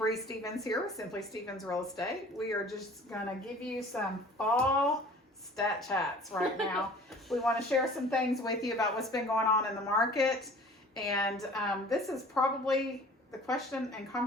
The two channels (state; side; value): normal; both; correlation 0.47